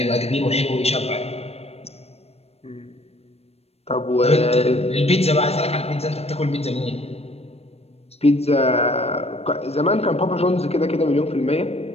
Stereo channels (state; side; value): late; right; 0.30 ms